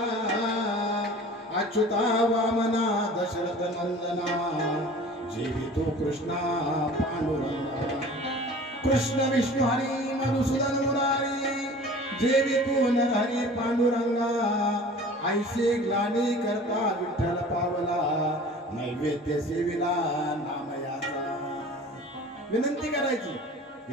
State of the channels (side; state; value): both; normal; correlation 0.43